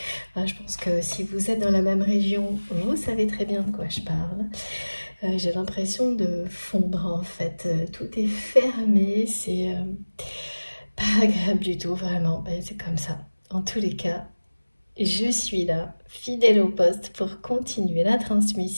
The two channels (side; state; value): both; inverted; correlation -1.00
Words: Je pense que si vous êtes dans la même région, vous savez très bien de quoi je parle. J'ai l'impression de fondre en fait. Tout est fermé, c'est pas agréable du tout, vraiment. C'est comme ça. En tous les cas, je suis là, fidèle au poste, pour continuer la